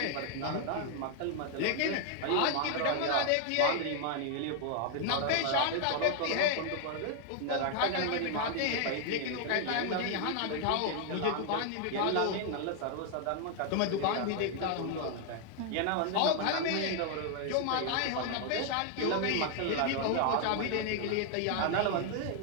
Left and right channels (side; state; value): both; different; correlation 0.00